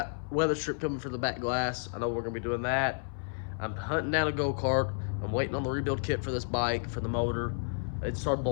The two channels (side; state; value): right; silent; 57 dB below the other